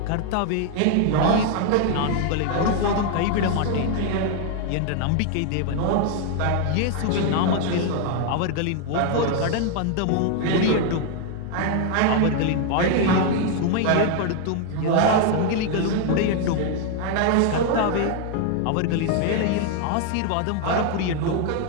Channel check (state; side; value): different; both; correlation 0.00